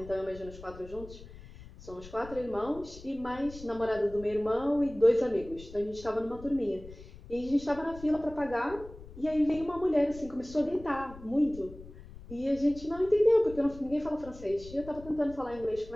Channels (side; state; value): left; noise; rumble, 17 dB below the sound